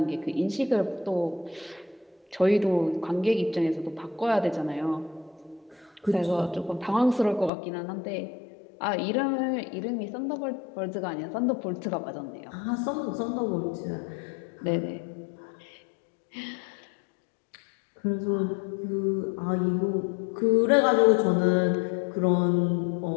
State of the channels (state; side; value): drops out; right; at 7.5 s